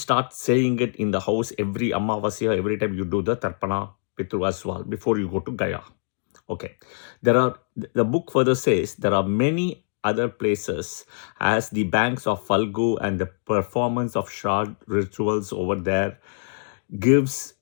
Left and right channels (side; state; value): right; silent; digital silence